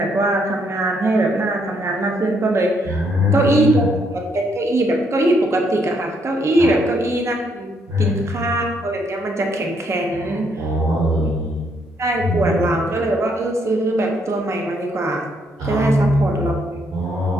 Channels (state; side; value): normal; both; correlation 0.72